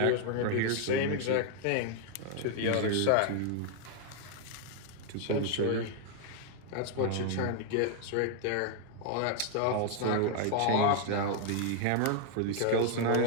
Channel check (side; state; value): both; different; correlation 0.00